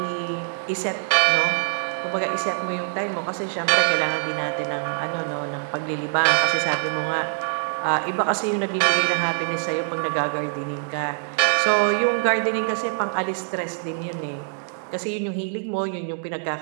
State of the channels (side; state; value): left; silent; digital silence